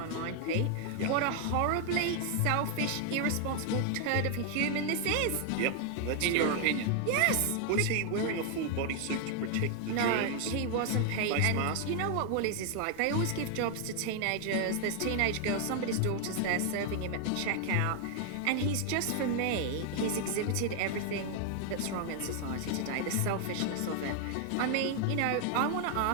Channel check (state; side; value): different; both; correlation 0.00